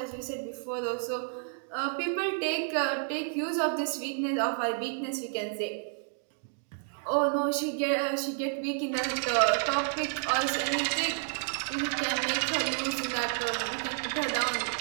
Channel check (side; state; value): left; silent; 57 dB below the other